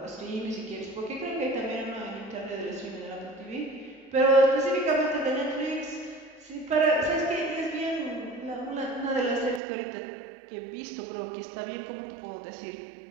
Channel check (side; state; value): left; drops out; at 9.6 s